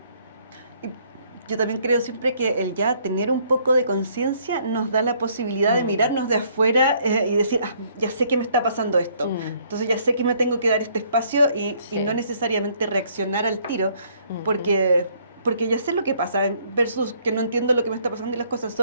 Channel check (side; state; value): both; inverted; correlation -0.65